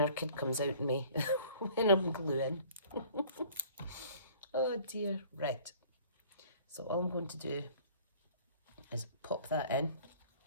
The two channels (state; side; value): inverted; both; correlation -0.51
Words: kid comes out in me when I'm gluing. Oh dear. Right, so all I'm going to do is pop that in.